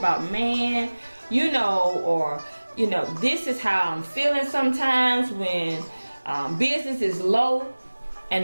man, you know, or, you know, this is how I'm feeling sometimes when business is low and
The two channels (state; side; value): inverted; both; correlation -1.00